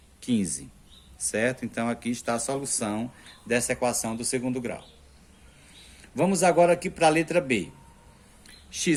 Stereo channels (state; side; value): identical; both; correlation 1.00